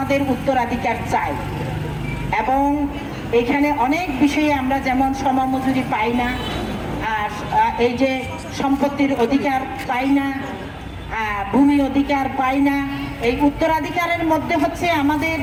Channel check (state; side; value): identical; both; correlation 1.00